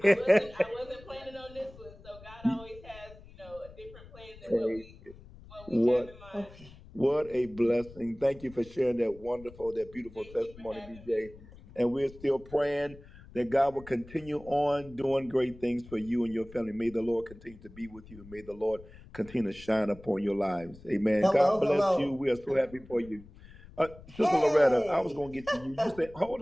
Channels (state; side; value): noise; left; rumble, 20 dB below the sound